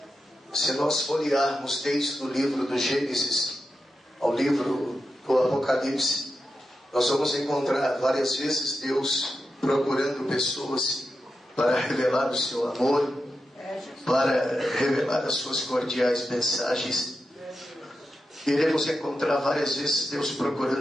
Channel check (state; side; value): normal; both; correlation 0.89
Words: Se nós folhearmos desde o livro do Gênesis ao livro do Apocalipse, nós vamos encontrar várias vezes Deus procurando pessoas para revelar o seu amor, para revelar as suas cordiais mensagens. Iremos encontrar várias vezes Deus